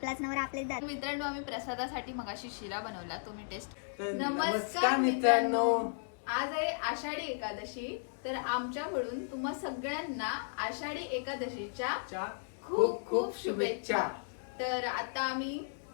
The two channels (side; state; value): right; silent; digital silence